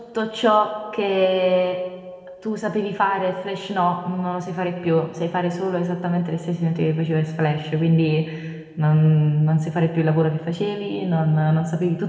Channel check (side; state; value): both; identical; correlation 1.00